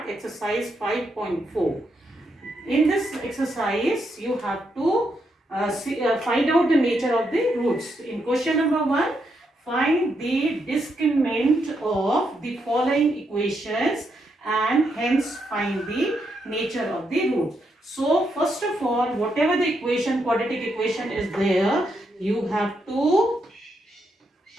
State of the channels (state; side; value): normal; both; correlation 0.80